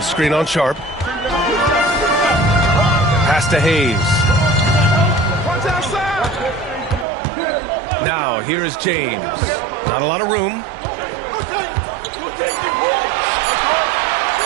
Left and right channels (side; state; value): left; drops out; at 7.1 s